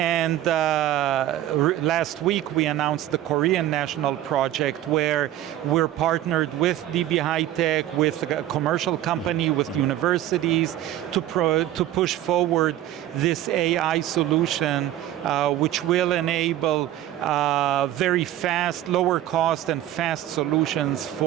last week we announced the Korean national project where we're partnered with DB High-Tech, with a commercial company, with universities to push forward this AI solution, which will enable very fast, lower cost and fast solutions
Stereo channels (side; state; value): left; quieter; 13.1 dB